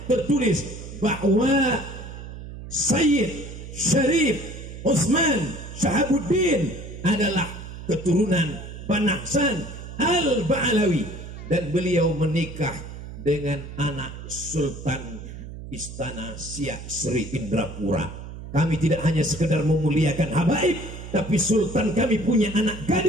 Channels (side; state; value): right; noise; hum, 11 dB below the sound